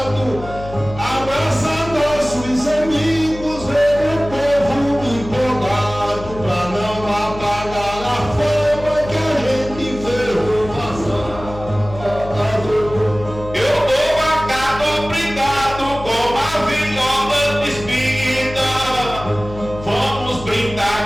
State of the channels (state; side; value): noise; left; hum, 12 dB below the sound